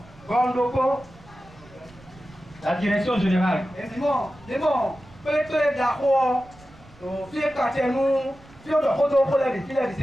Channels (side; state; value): right; noise; rumble, 24 dB below the sound